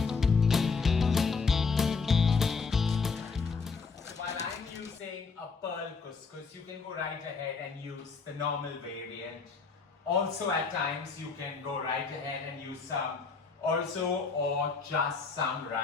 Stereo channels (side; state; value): right; quieter; 4.8 dB